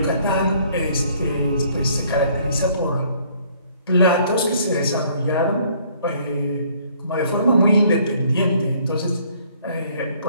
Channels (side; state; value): both; inverted; correlation -0.61